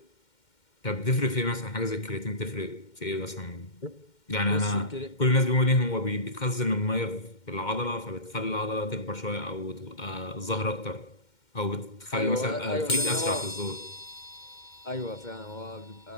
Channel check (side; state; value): right; late; 2.1 ms